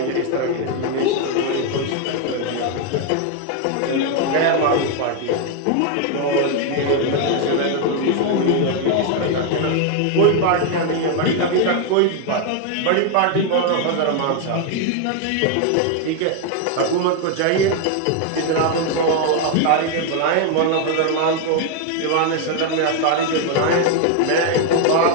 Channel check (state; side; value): different; both; correlation 0.01